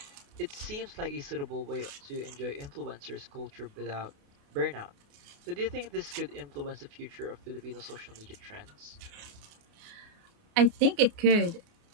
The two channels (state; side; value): late; left; 28 ms